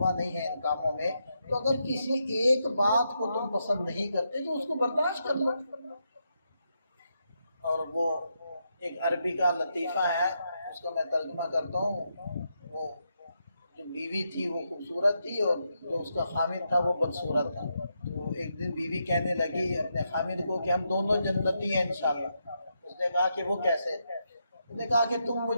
نہیں ہے ان کاموں میں، تو اگر کسی ایک بات کو تم پسند نہیں کرتے تو اس کو برداشت کر لو۔ اور وہ ایک عربی کا لطیفہ ہے، اس کو میں ترجمہ کرتا ہوں۔ وہ جو بیوی تھی وہ خوبصورت تھی اور جو اس کا خامد تھا وہ بدصورت تھا۔ تو ایک دن بیوی کہنے لگی اپنے خامد کو کہ ہم دونوں جنتی ہیں انشاءاللہ۔ اس نے کہا کہ وہ کیسے؟ اس نے کہا کہ تم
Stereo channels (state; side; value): inverted; both; correlation -0.82